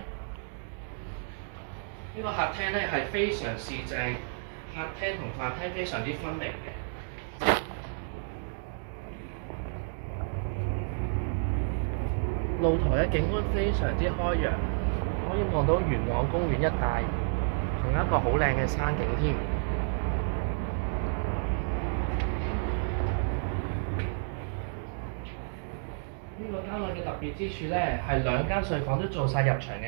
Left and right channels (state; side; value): silent; left; digital silence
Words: 呢個客廳咧係非常市正，客廳同飯廳非常之分明嘅。露台嘅景觀非常之開揚，可以望到元朗公園一帶，仲有一個好靚嘅山景添。呢個單位嘅特別之處咧，係兩間睡房都做晒入牆